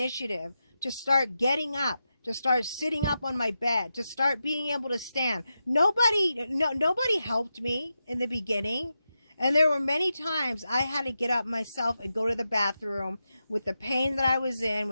to start getting up, to start sitting up on my bed, to start being able to stand. Nobody helped me in the beginning. And there were many times I had to get up myself and go to the bathroom with the pain that I was in,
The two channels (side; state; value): both; inverted; correlation -0.89